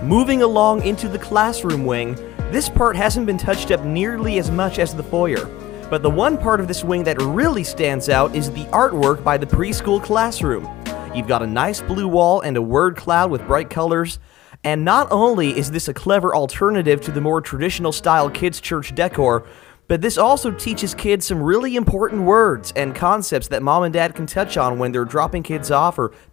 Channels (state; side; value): quieter; right; 15.9 dB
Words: Moving along into the classroom wing, this part hasn't been touched up nearly as much as the foyer, but the one part of this wing that really stands out is the artwork by the preschool classroom. You've got a nice blue wall and a word cloud with bright colors, and not only is this a clever alternative to the more traditional style kids' church decor, but this also teaches kids some really important words and concepts that mom and dad can touch on when they're dropping kids off or